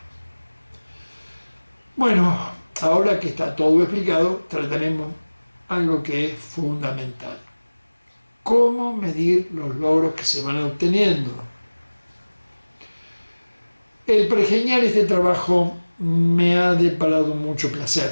Bueno, ahora que está todo explicado, trataremos algo que es fundamental. ¿Cómo medir los logros que se van obteniendo? El pergeñar este trabajo me ha deparado mucho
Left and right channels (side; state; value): both; inverted; correlation -1.00